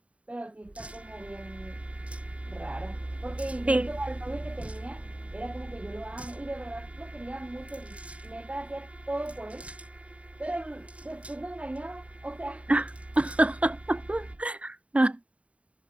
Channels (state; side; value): late; left; 0.065 ms